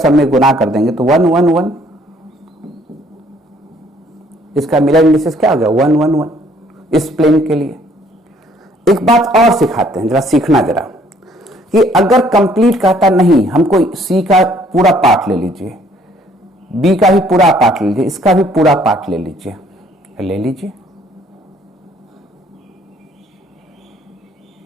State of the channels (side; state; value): both; normal; correlation 0.62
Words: में गुना कर देंगे तो 1 1 1, इसका मिरर इंडिसेस क्या हो गया, 1 1 1 इस प्लेन के लिए। एक बात और सिखाते हैं, जरा सीखना जरा, कि अगर कंप्लीट कहता नहीं, हमको सी का पूरा पार्ट ले लीजिए, बी का भी पूरा पार्ट ले लीजिए, इसका भी पूरा पार्ट ले लीजिए, ले लीजिए।